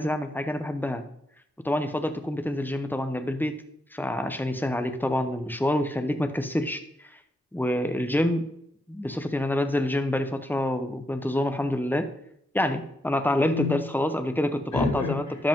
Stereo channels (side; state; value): both; normal; correlation 0.81